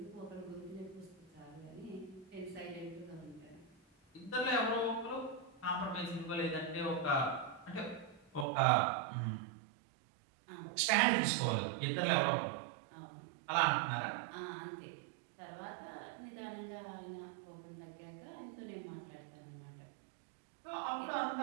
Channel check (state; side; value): drops out; left; at 8.5 s